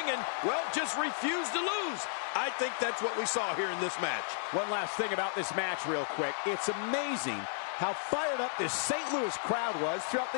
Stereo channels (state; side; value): silent; right; digital silence